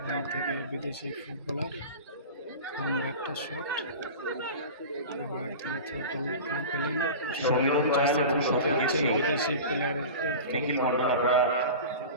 থেকে বিদেশি ফুটবলার, লম্বা একটা শট, আবার তিনি পেলেন বিদেশি প্লেয়ারের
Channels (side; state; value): both; inverted; correlation -0.33